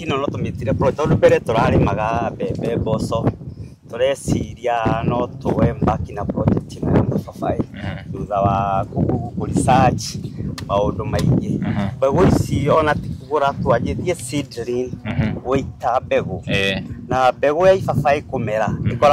no tũmĩtire project tondũ mbere tũrarĩmaga mbembe mboco tureciria no tuwe mbaki na project ĩno ya mababai thutha wa research maũndũ maingĩ mbegũ ici ona ti kũgũra twanjĩtie seedling gũita mbegũ na mbegũ ya ibabai kũmera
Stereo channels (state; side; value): identical; both; correlation 1.00